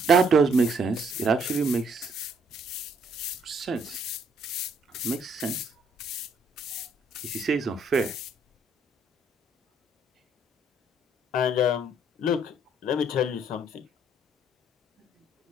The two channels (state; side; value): normal; both; correlation 0.67